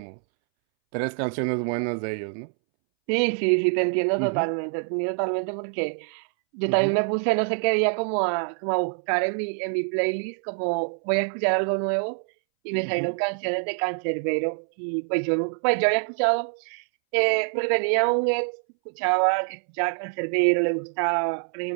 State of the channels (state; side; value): silent; left; 62 dB below the other